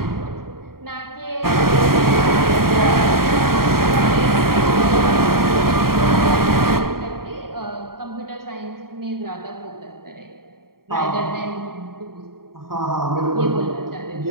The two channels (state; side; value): late; left; 0.93 ms